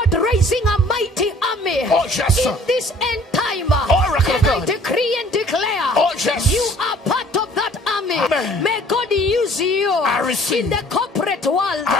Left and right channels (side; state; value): both; normal; correlation 0.54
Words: raising a mighty army in this end time. And I decree and declare, you are part of that army. Amen. May God use you. I receive. In the corporate world,